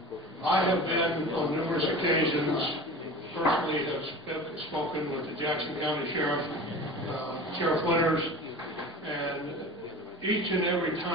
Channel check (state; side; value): normal; both; correlation 0.36